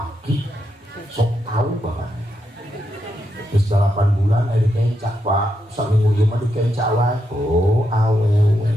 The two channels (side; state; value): both; normal; correlation 0.83